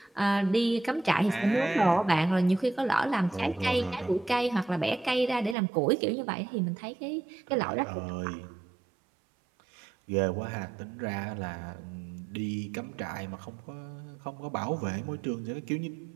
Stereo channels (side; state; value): left; drops out; at 5.6 s